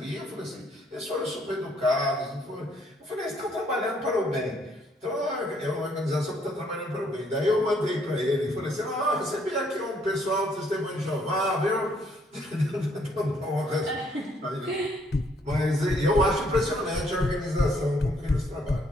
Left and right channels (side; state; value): both; normal; correlation 0.68